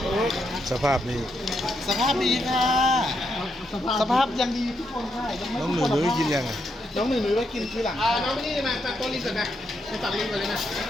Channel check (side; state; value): both; normal; correlation 0.80